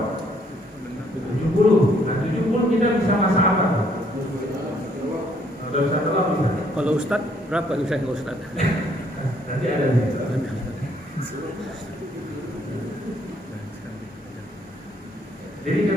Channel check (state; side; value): normal; both; correlation 0.67